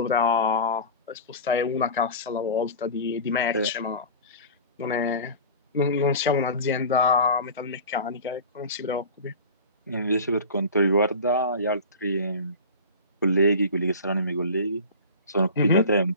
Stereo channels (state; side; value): inverted; both; correlation -0.34